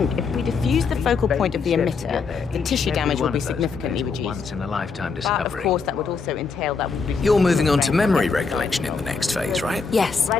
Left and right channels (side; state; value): right; quieter; 5.0 dB